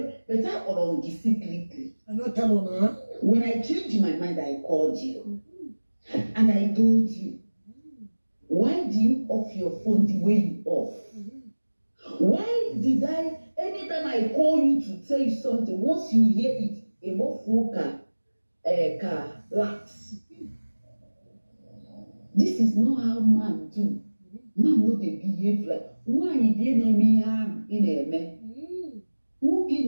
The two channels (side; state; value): both; inverted; correlation -1.00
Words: but I on secretly. I'm not telling her. When I changed my mind, I called you and I told you, why do you off your phone the way you off? Why did I, anytime I call you to tell you something, once you hear it, a more foca, lax. This is not how man do. Man no dey behave like why dey na me harm in eme. Who gi